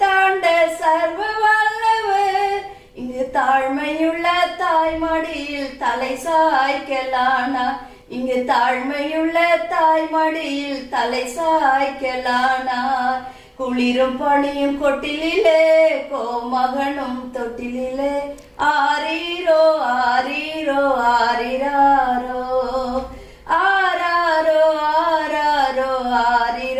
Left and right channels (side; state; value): both; identical; correlation 1.00